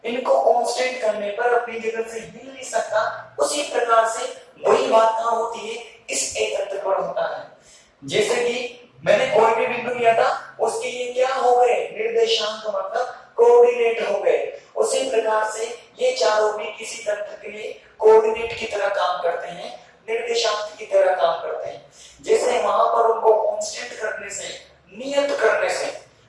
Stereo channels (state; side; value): identical; both; correlation 1.00